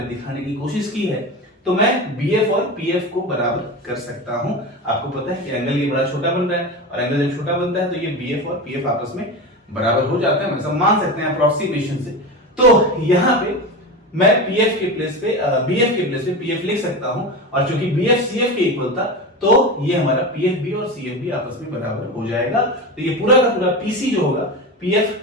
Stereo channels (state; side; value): normal; both; correlation 0.24